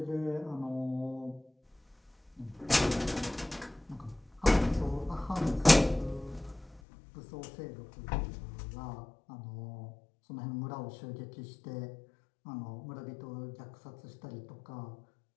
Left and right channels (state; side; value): drops out; right; at 6.8 s